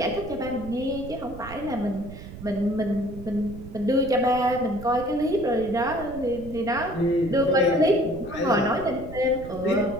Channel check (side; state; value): right; noise; rumble, 14 dB below the sound